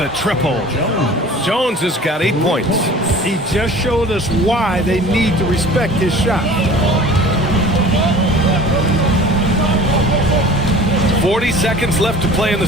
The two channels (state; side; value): normal; both; correlation 0.44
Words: triple. Jones has got 8 points. He just showed us why they need to respect his shot. 40 seconds left to play in the